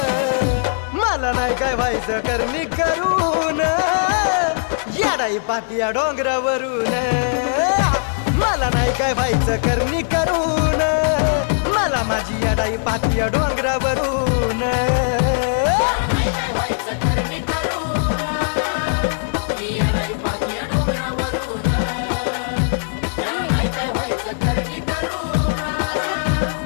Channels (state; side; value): silent; right; digital silence